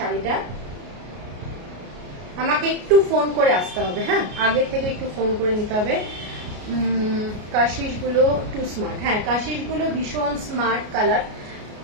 আমাকে একটু ফোন করে আসতে হবে, হ্যাঁ, আগের থেকে একটু ফোন করে নিতে হবে। কাশিসগুলো টু স্মার্ট, হ্যাঁ কাশিসগুলো ভীষণ স্মার্ট কালার,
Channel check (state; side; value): late; left; 33 ms